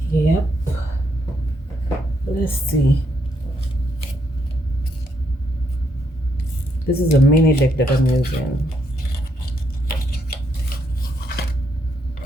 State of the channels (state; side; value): normal; both; correlation 0.76